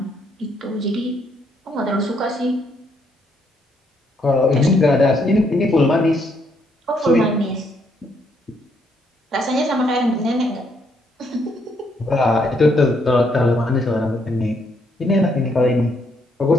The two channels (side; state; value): both; normal; correlation 0.72